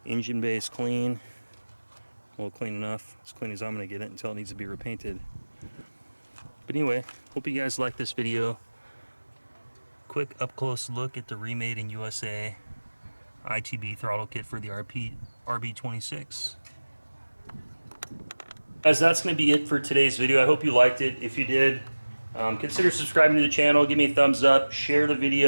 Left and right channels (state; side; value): inverted; both; correlation -1.00